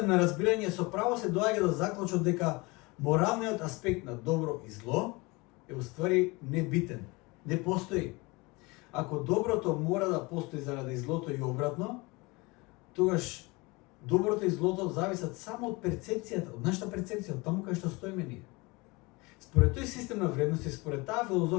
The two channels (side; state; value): right; quieter; 25.0 dB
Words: на разбирање со право се доаѓа до заклучок дека моралниот аспект на добро и зло е уствари небитен, не постои. Ако доброто мора да постои заради злото и обратно, тогаш доброто и злото зависат само од перцепцијата, од нашата перцепција, од таму кај што стоиме ние. Според тој систем на вредности, според таа